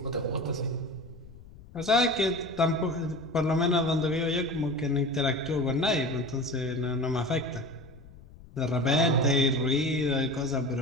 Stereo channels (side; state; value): left; noise; rumble, 20 dB below the sound